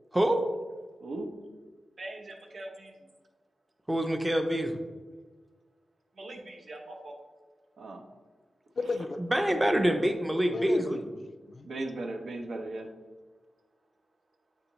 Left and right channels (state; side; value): normal; both; correlation 0.95